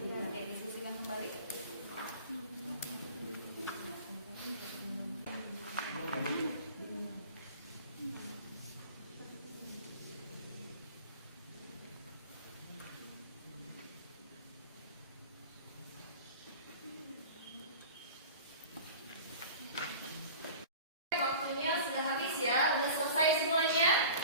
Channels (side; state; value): both; inverted; correlation -0.40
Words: Oke, diskusikan kembali. Waktunya sudah habis ya, udah selesai semuanya?